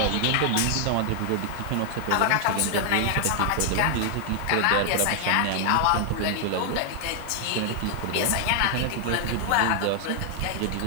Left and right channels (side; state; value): both; different; correlation 0.00